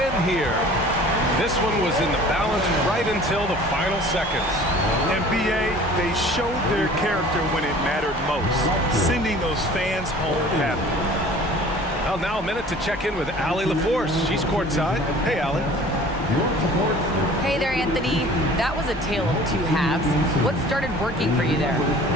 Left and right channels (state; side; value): normal; both; correlation 0.47